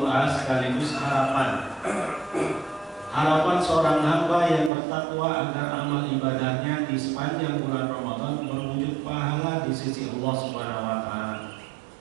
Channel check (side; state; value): left; drops out; at 4.7 s